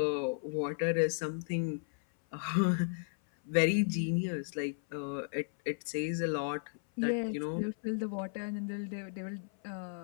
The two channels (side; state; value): right; silent; 55 dB below the other